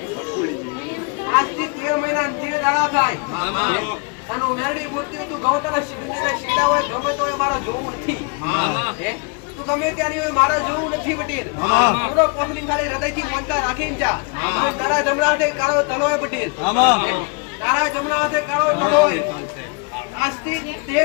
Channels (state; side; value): quieter; right; 33.7 dB